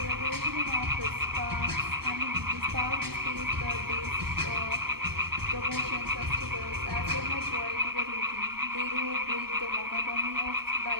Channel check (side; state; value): left; late; 0.96 ms